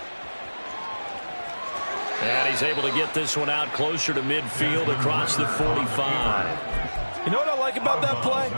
And he's able to get this one out closer to midfield across the 45. You know what I like about that play?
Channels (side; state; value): both; inverted; correlation -1.00